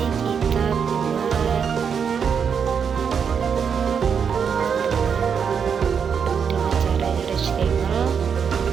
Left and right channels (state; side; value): quieter; left; 6.9 dB